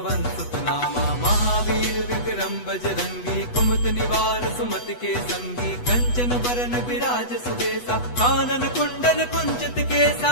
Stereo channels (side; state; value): right; late; 8.1 ms